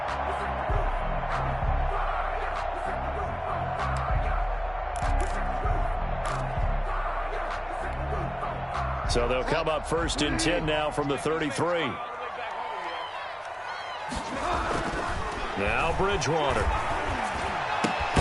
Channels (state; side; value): identical; both; correlation 1.00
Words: So they'll come up first and 10 now from the 33. Now Bridgewater.